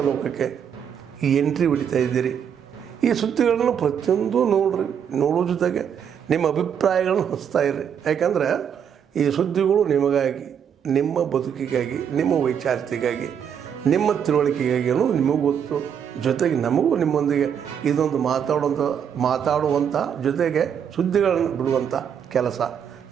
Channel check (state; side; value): quieter; left; 8.1 dB